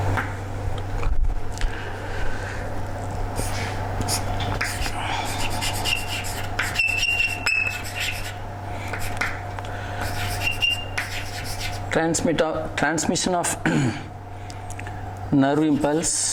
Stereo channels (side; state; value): both; identical; correlation 1.00